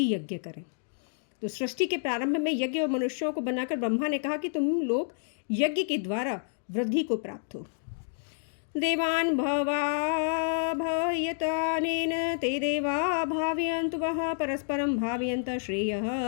यज्ञ करें। तो सृष्टि के प्रारंभ में यज्ञ और मनुष्यों को बनाकर ब्रह्मा ने कहा कि तुम लोग यज्ञ के द्वारा वृद्धि को प्राप्त हो। देवान् भावयतानेन ते देवा भावयन्तु वः परस्परं भावयन्त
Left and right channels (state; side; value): silent; right; digital silence